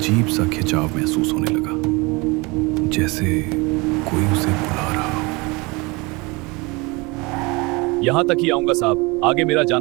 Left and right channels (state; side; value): quieter; left; 26.0 dB